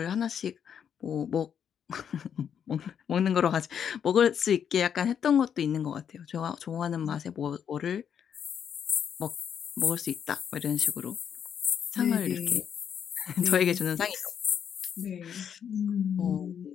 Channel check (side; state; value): right; quieter; 8.2 dB